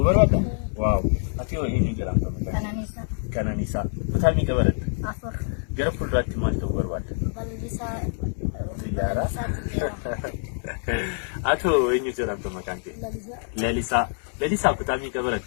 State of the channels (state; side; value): silent; right; digital silence